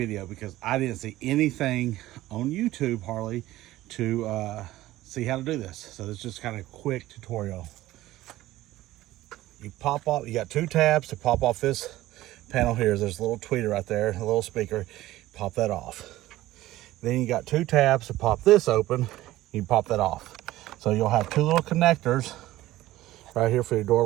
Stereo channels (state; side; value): quieter; left; 16.1 dB